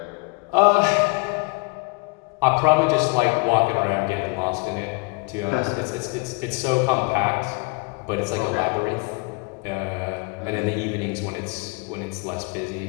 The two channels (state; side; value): quieter; right; 30.4 dB